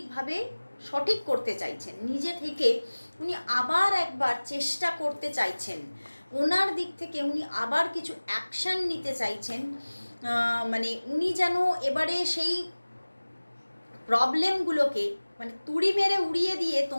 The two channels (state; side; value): inverted; both; correlation -1.00